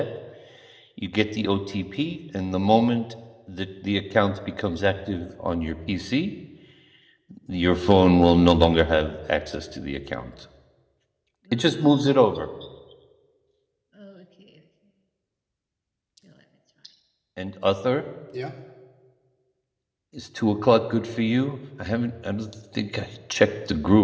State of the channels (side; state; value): both; identical; correlation 1.00